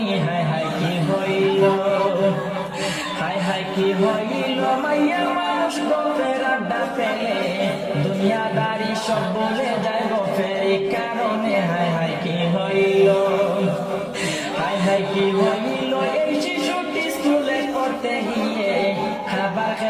হায় হায় কি হইল। হায় হায় কি হইল, মাইয়া মানুষ গপের আড্ডা পেলে দুনিয়াদারি সব বলে যায় গপের কারণে, হায় হায় কি হইল। হায় হায় কি হইল, এই শিশুটি স্কুলে পড়তে গিয়ে খাবার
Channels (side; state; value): both; identical; correlation 1.00